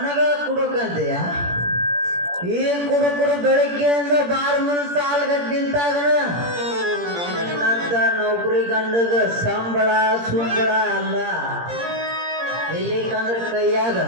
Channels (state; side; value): late; left; 17 ms